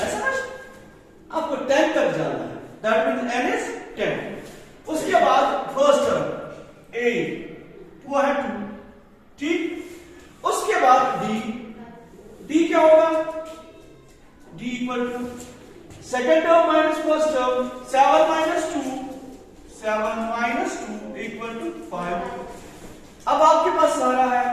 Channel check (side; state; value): both; identical; correlation 1.00